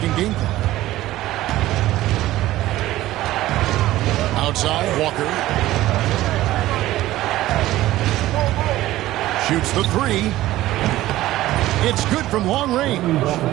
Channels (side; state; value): left; quieter; 15.7 dB